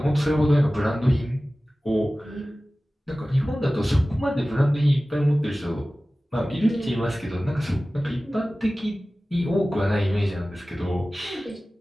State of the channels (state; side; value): normal; both; correlation 0.97